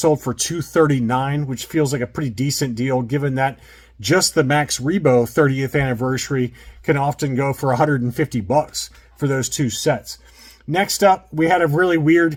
for $239, which feels like a pretty decent deal given that just the Max Rebo 30th anniversary can often go for $150 for those two sets. Next up, we had a really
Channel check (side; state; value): both; identical; correlation 1.00